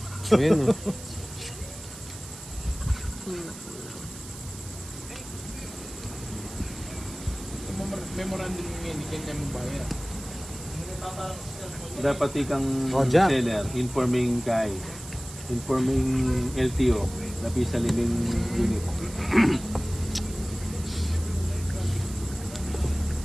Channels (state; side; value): noise; right; hiss, 14 dB below the sound